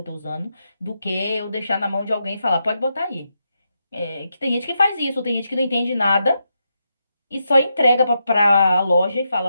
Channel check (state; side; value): inverted; both; correlation -0.84